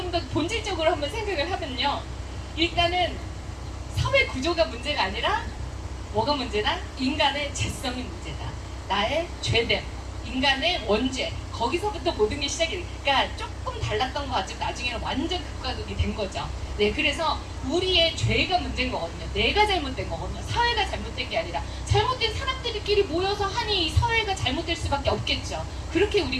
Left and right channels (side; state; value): both; identical; correlation 1.00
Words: 본질적으로 한번 생각을 하면요. 일단은 사회 구조가 문제가 아니라 뭐가 문제다? 인간의 죄성이 문제다. 나의 죄됨, 인간의 원죄, 거기서부터 모든 게 시작이 돼. 그러니까 조금 달랐던 거 같지만 나중에는 완전 극과 극이 된 거죠. 네, 그래서 우리의 죄가 문제인 거거든요. 내가 잘못된 거거든요. 사회가 잘못된 게 아니라 잘못된 사람들끼리 모여서 하니 이 사회가 잘못될 수밖에 없겠죠. 그렇게